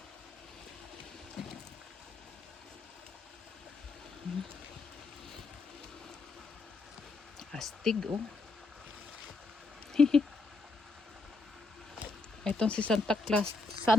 Astig oh. Itong si Santa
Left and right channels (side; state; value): right; quieter; 3.3 dB